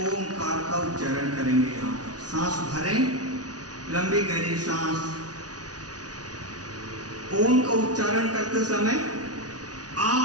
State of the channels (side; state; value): left; late; 0.68 ms